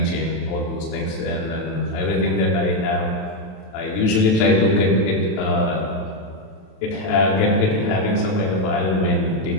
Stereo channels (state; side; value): late; right; 27 ms